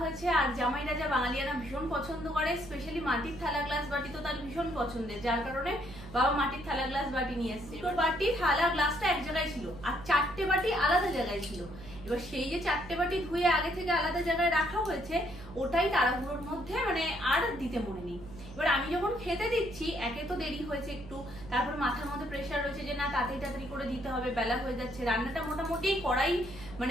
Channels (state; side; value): noise; right; hum, 15 dB below the sound